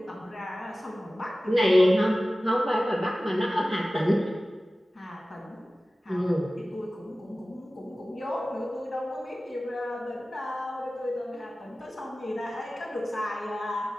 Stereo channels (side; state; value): both; normal; correlation 0.96